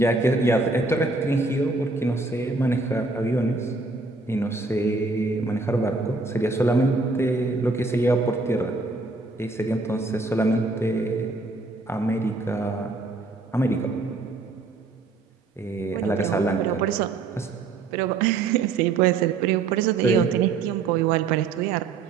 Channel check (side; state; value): left; quieter; 3.7 dB